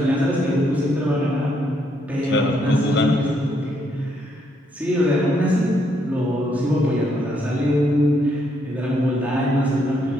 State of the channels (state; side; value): normal; both; correlation 0.74